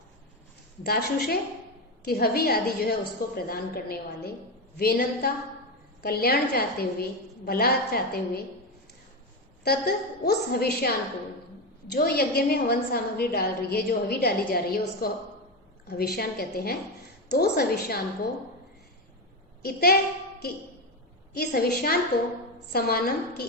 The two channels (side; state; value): both; normal; correlation 0.14